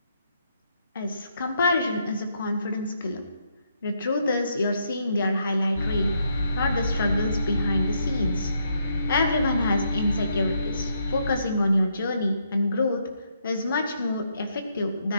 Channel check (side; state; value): both; inverted; correlation -0.76